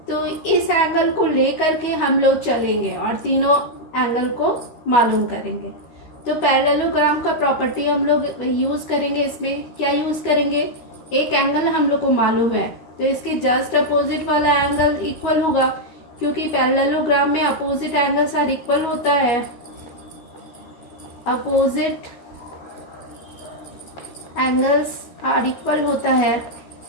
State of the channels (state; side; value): late; right; 13 ms